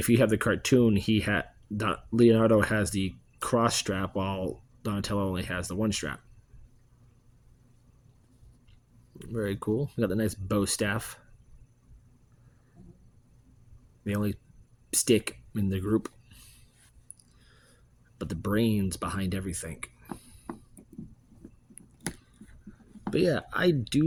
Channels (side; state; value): both; identical; correlation 1.00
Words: you have the cartoon, Leonardo has the cross strap while Donatello only has the one strap. Very cool. We got the nice bow staff. The only stick in the group, but the brains behind everything. But yeah, I do